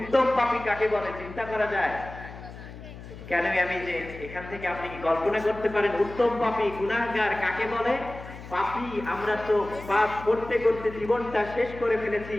পাপী কাকে বলে চিন্তা করা যায়? কেন আমি যে এখান থেকে আপনি কি কল্পনা করতে পারেন উত্তম পাপী গুনাহগার কাকে বলে? পাপী আমরা তো পাপ করতে করতে জীবনটা শেষ করে ফেলেছি,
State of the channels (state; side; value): noise; left; hum, 14 dB below the sound